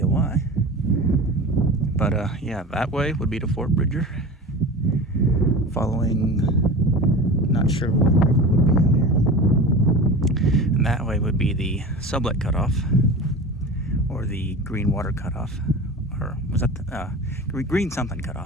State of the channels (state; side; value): normal; both; correlation 0.33